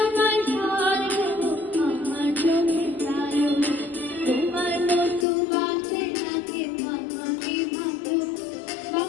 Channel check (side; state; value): right; drops out; at 5.2 s